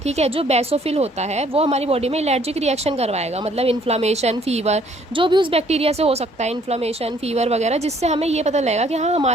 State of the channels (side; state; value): both; normal; correlation 0.62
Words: ठीक है। जो बेसोफिल होता है वो हमारी बॉडी में एलर्जिक रिएक्शन करवाएगा, मतलब इन्फ्लामेशन, फीवर, जो भी उस बैक्टीरिया से हो सकता है, इन्फ्लामेशन, फीवर वगैरह, जिससे हमें ये पता लगेगा कि हाँ